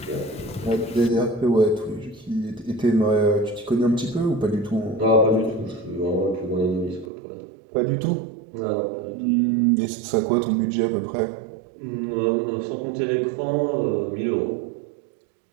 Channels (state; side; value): drops out; left; at 7.1 s